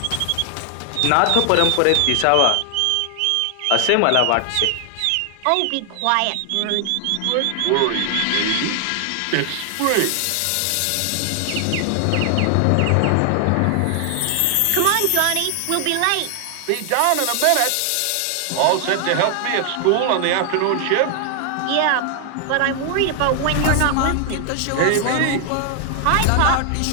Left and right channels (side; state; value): both; different; correlation 0.00